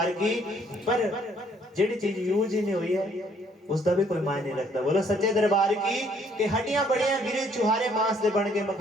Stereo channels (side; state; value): both; normal; correlation 0.64